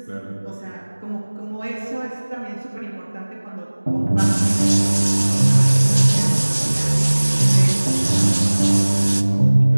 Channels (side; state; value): both; inverted; correlation -1.00